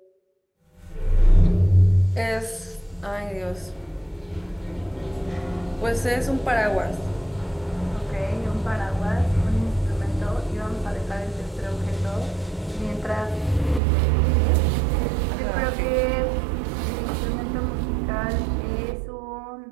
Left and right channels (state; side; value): drops out; left; at 13.8 s